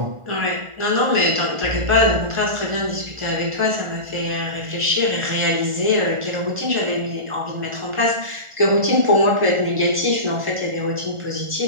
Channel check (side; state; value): left; late; 1.4 ms